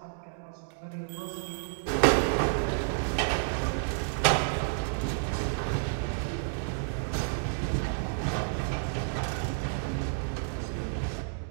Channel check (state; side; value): silent; left; digital silence